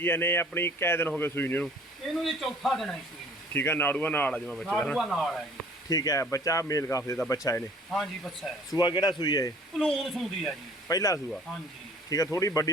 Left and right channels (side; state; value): both; normal; correlation 0.52